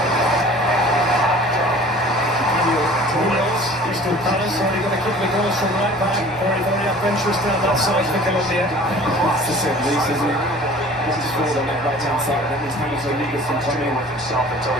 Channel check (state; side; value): normal; both; correlation 0.46